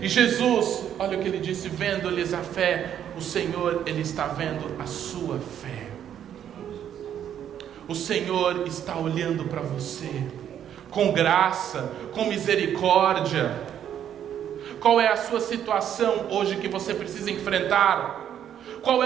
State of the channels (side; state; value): left; quieter; 9.8 dB